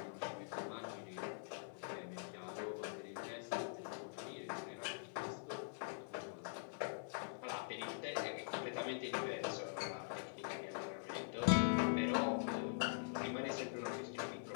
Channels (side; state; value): right; silent; digital silence